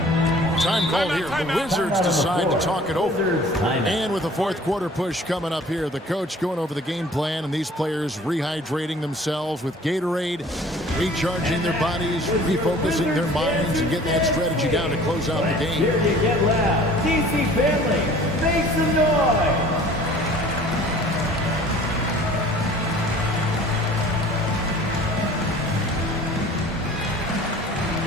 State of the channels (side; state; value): both; normal; correlation 0.49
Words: Time called here. The Wizards decide to talk it over. And with the fourth quarter push coming up here, the coach going over the game plan and these players rehydrating themselves with Gatorade, recharging their bodies, refocusing their minds, and getting that strategy down to close out the game. Here to get loud, DC family, make some noise.